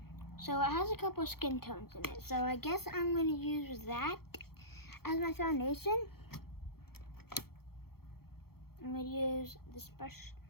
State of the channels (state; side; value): late; right; 0.95 ms